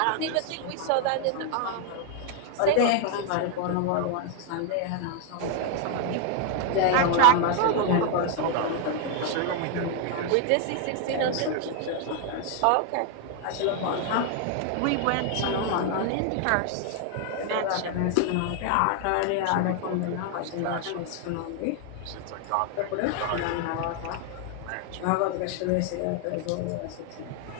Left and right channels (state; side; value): different; both; correlation 0.00